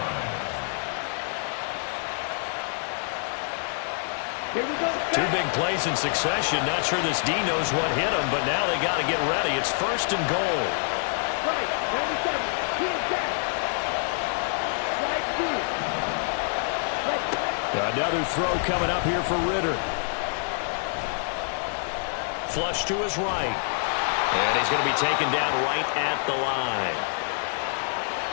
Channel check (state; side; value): silent; right; 61 dB below the other